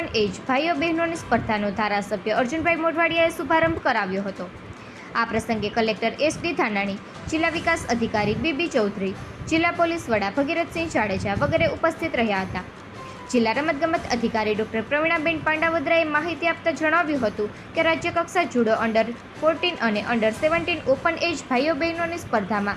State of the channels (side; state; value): both; identical; correlation 1.00